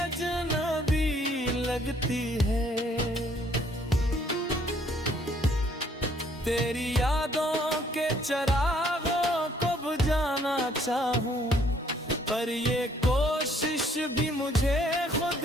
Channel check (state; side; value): normal; both; correlation 0.64